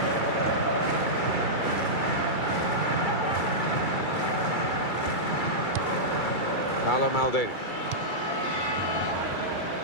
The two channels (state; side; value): late; right; 2.3 ms